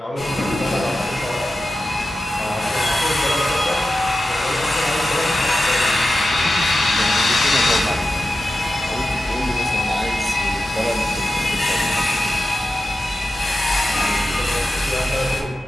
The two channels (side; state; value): both; normal; correlation 0.92